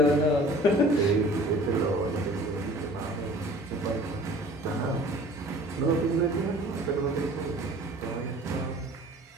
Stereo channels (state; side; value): normal; both; correlation 0.47